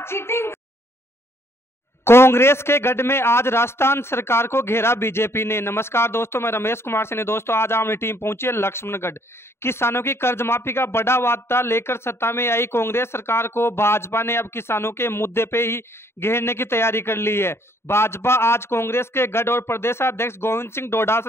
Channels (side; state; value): right; late; 0.12 ms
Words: चीटिंग। कांग्रेस के गढ़ में आज राजस्थान सरकार को घेरा बीजेपी ने। नमस्कार दोस्तों, मैं रमेश कुमार सिंह। दोस्तों आज हमारी टीम पहुंची है लक्ष्मणगढ़। किसानों की कर्ज माफी का बड़ा वादा लेकर सत्ता में आई कांग्रेस सरकार को भाजपा ने अब किसानों के मुद्दे पे ही घेरने की तैयारी कर ली है। भाजपा आज कांग्रेस के गढ़ और प्रदेशाध्यक्ष गोविंद सिंह